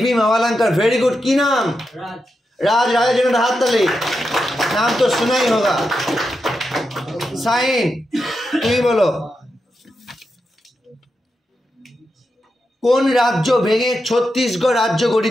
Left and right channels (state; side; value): normal; both; correlation 0.87